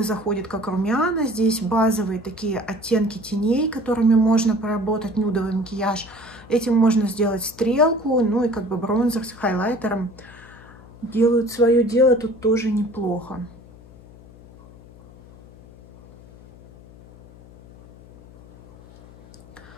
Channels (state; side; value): noise; left; hum, 22 dB below the sound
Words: заходит как румяна, здесь базовые такие оттенки теней, которыми можно поработать нюдовый макияж. Этим можно сделать стрелку, ну и как бы бронзер с хайлайтером делают свое дело тут тоже неплохо.